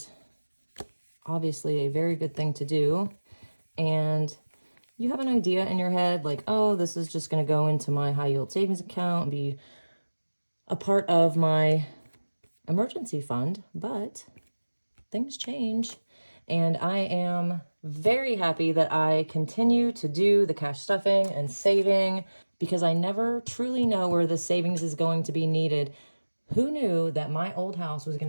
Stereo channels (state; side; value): inverted; both; correlation -1.00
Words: obviously a very good thing to do, and you have an idea in your head like, oh, this is just going to go into my high yield savings account and be a part of my emergency fund, but things change. And I am very happy that I continue to do the cash stuffing and saving because I never truly know where the savings is going to be needed. Who knew that my old house was going